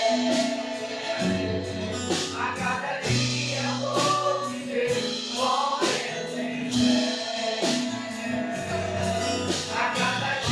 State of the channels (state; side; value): identical; both; correlation 1.00